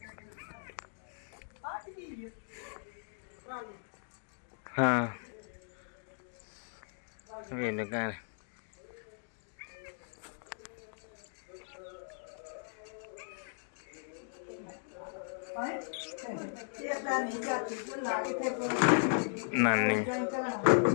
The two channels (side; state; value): right; silent; digital silence